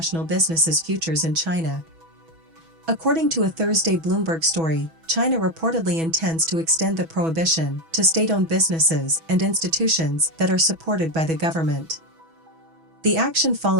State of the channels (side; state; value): left; late; 6.1 ms